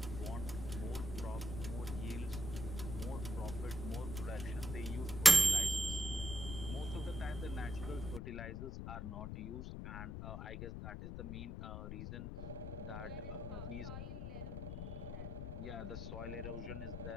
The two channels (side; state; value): left; noise; rumble, 5 dB below the sound